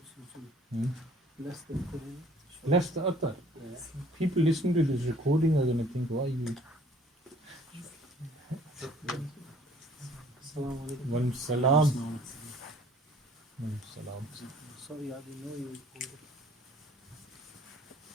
Bless the Quran. Bless the other. People listening to this recording are going to think, why you? Assalamu alaikum. Walaikum salam. Walaikum salam. Sorry, I didn't know you recorded.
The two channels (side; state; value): both; normal; correlation 0.55